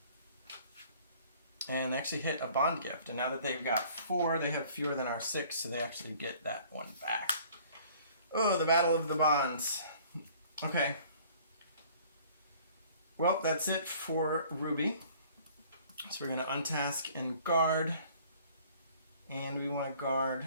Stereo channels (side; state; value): both; inverted; correlation -0.54